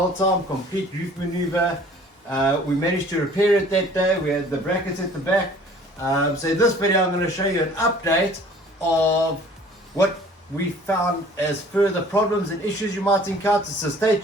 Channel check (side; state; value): both; normal; correlation 0.51